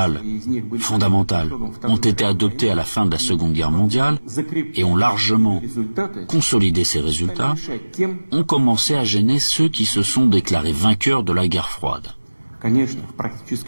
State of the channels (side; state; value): both; inverted; correlation -1.00